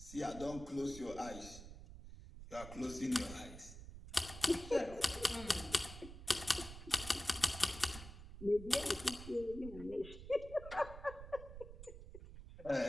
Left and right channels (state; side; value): noise; right; rumble, 13 dB below the sound